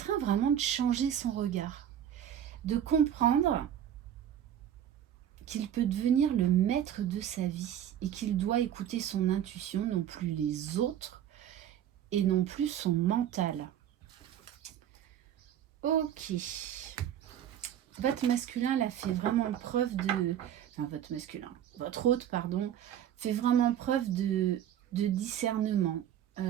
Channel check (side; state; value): left; quieter; 10.3 dB